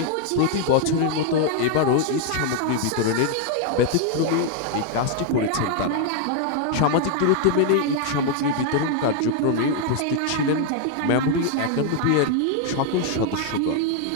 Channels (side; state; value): both; different; correlation 0.00